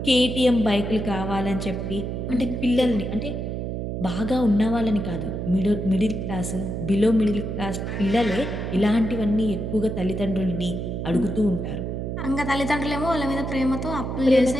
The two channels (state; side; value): noise; right; hum, 4 dB below the sound